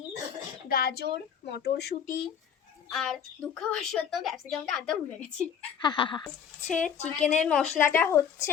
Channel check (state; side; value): quieter; right; 7.8 dB